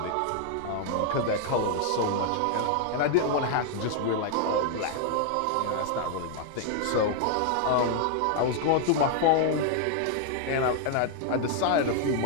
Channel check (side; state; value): both; different; correlation 0.00